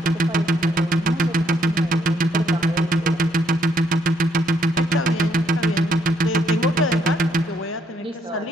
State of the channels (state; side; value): normal; both; correlation 0.71